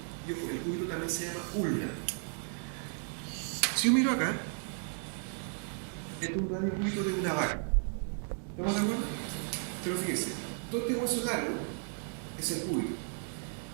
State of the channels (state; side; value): silent; left; 55 dB below the other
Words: El cúbito también se llama ulna. Si yo miro acá, este es un radiocúbito de una vaca. ¿Estamos de acuerdo? Pero fíjense, todo este hueso largo es el cúbito.